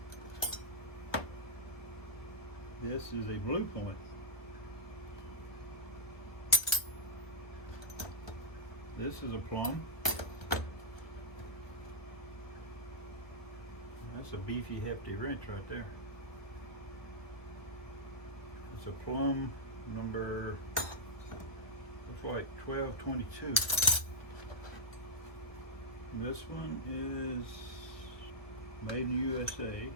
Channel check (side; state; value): right; late; 1.1 ms